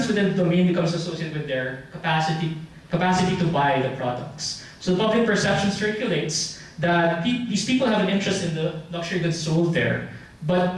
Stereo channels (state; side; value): identical; both; correlation 1.00